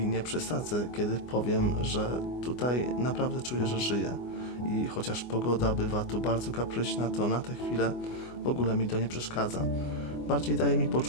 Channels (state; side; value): late; right; 24 ms